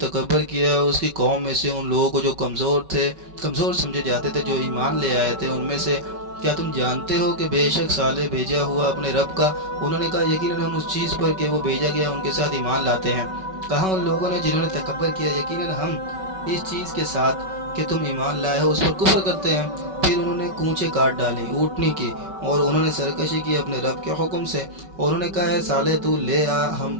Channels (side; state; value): left; late; 5.3 ms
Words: کیا اس کی قوم میں سے ان لوگوں کو جو کمزور سمجھے جاتے تھے، جو ایمان لے آئے تھے ان میں سے، کیا تم جانتے ہو کہ بے شک صالح بھیجا ہوا اپنے رب کا؟ انہوں نے کہا یقیناً ہم اس چیز پر کہ وہ بھیجا گیا ان کے ساتھ ایمان لاتے ہیں۔ کہا ان لوگوں نے جنہوں نے تکبر کیا یقیناً ہم اس چیز کے ساتھ کہ تم ایمان لائے ہو اس پر کفر کرتے ہیں۔ پھر انہوں نے کونچے کاٹ ڈالی اونٹنی کی، اور انہوں نے سرکشی کی اپنے رب کے حکم سے، اور انہوں نے کہا ہے صالح تو لے آ ہم